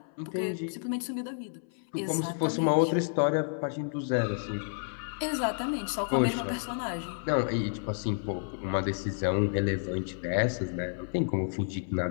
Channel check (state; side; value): silent; right; 57 dB below the other